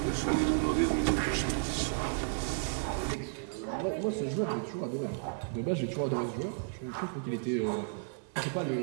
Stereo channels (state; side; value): silent; left; 56 dB below the other